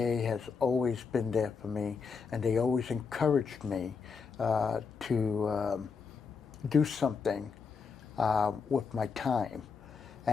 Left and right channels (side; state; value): right; quieter; 5.5 dB